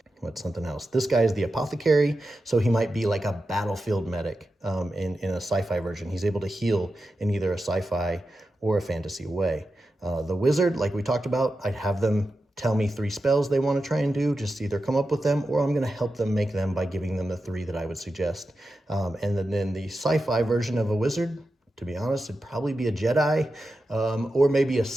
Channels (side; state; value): both; normal; correlation 0.91